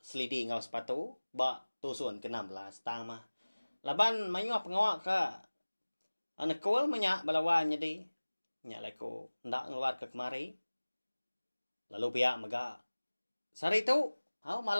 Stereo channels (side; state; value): both; inverted; correlation -1.00